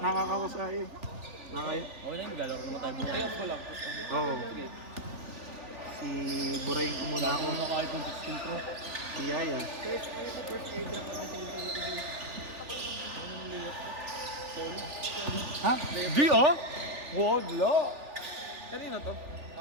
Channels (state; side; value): late; left; 3.4 ms